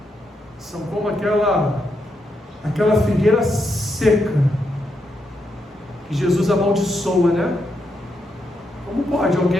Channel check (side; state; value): both; normal; correlation 0.81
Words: São como aquela figueira seca, que Jesus amaldiçoa, né? Como pode